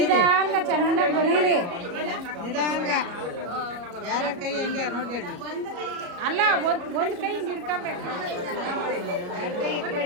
ಚೆನ್ನಾಗಿ ಬರೀರಿ. ನಿಧಾನ ಯಾರ ಕೈ ಹೆಂಗೆ ನೋಡ್ಕೊಳ್ಳಿ. ಅಲ್ಲ, ಒಂದು ಕೈ ಹಿಡ್ಕೊಬೇಕು.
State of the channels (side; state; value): left; late; 34 ms